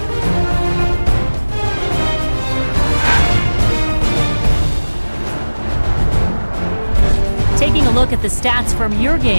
Taking a look at the stats from your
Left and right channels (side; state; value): both; inverted; correlation -1.00